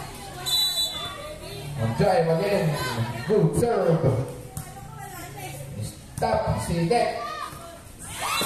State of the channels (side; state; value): both; identical; correlation 1.00